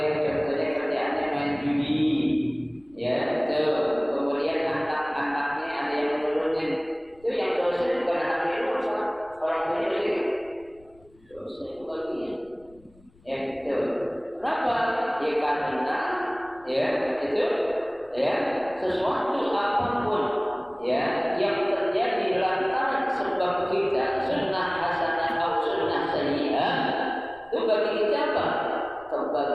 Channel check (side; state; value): left; noise; rumble, 28 dB below the sound